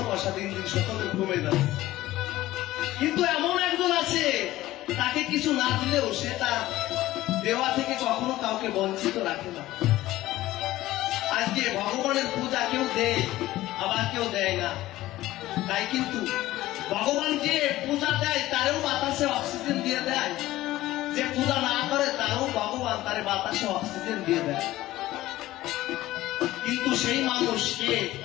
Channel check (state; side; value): quieter; right; 16.0 dB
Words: দিন দিন সকলে কমে যাবে। কিন্তু এমন একজন আছে, তাকে কিছু না দিলেও সে তার দেওয়া থেকে কখনো কাউকে বঞ্চিত রাখে না। আজকে ভগবানের পূজা কেউ দেয়, আবার কেউ দেয় না। তাই কিন্তু ভগবান যে পূজা দেয় তারও বাতাসে অক্সিজেন দিয়ে দেয়, যে পূজা না করে তারও ভগবান তার বাতাসে অক্সিজেন দিয়ে দেয়। কিন্তু সেই মানুষকে